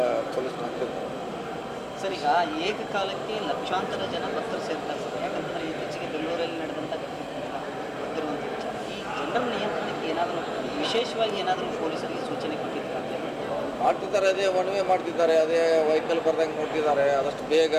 ಪೊಲೀಸ್ ಹಾಕಿರ್ತಾರೆ. ಸರ್, ಈಗ ಏಕಕಾಲಕ್ಕೆ ಲಕ್ಷಾಂತರ ಜನ ಭಕ್ತರು ಸೇರ್ತಾರೆ ಸರ್. ಯಾಕಂತಂದ್ರೆ ಇತ್ತೀಚೆಗೆ ಬೆಂಗಳೂರಲ್ಲಿ ನಡೆದಂಥ ಗೊತ್ತಿರುವಂಥ ವಿಚಾರ. ಈ ಜನರ ನಿಯಂತ್ರಣಕ್ಕೆ ಏನಾದರೂ ವಿಶೇಷವಾಗಿ ಏನಾದರೂ ಪೊಲೀಸರಿಗೆ ಸೂಚನೆ ಕೊಟ್ಟಿದ್ದಾರೆ? ಮಾಡ್ತಿದ್ದಾರೆ, ಅದೇ ಒನ್ ವೇ ಮಾಡ್ತಿದ್ದಾರೆ, ಅದೇ ವೆಹಿಕಲ್ ಬರ್ದಂಗೆ ನೋಡ್ತಿದ್ದಾರೆ. ಆದಷ್ಟು ಬೇಗ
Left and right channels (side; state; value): both; identical; correlation 1.00